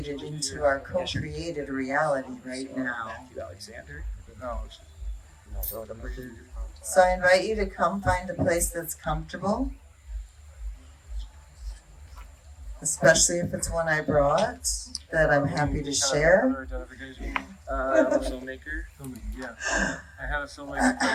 into our co-created reality right now. So I invite you to come find a place that's comfortable, especially if it's one I brought that I'm happy to share. I'm a filmmaker. Yeah. I have a filmmaker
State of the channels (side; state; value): both; identical; correlation 1.00